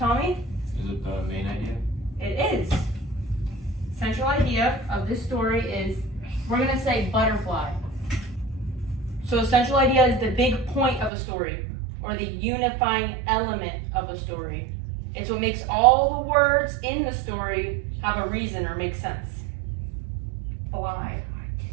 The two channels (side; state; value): left; drops out; at 11.1 s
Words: Is it the main idea? It is. Central idea of this story is, we're going to say butterfly. So a central idea is the big point of a story, or the unifying element of a story. It's what makes all the words in the story have a reason or make sense. Fly.